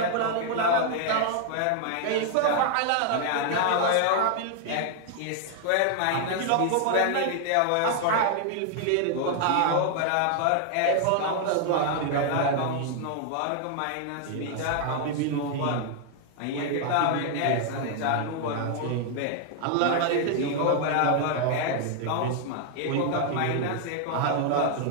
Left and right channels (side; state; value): both; different; correlation 0.00